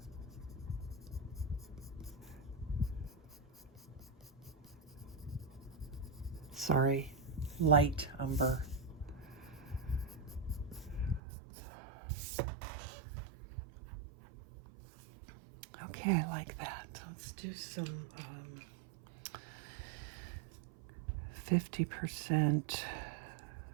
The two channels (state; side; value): drops out; left; at 11.2 s